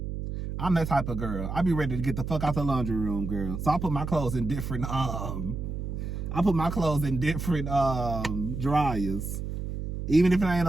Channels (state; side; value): noise; right; hum, 5 dB below the sound